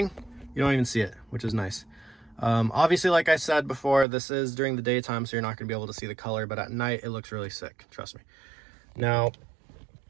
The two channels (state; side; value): drops out; left; at 4.0 s